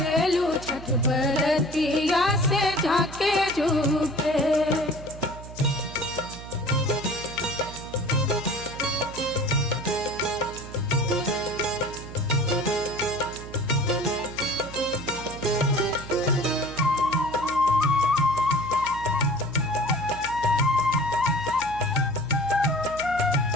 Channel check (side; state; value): right; noise; hum, 14 dB below the sound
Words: छठ बरतिया से झाके झूके।